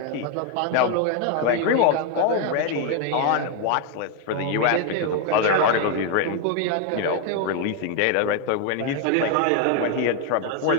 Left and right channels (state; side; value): different; both; correlation 0.01